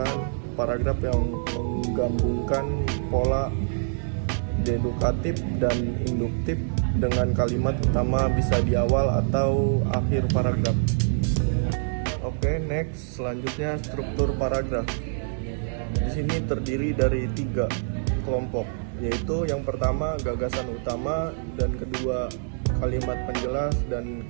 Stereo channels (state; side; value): silent; left; digital silence